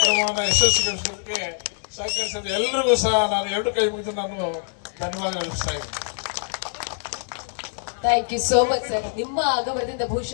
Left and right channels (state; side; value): silent; right; digital silence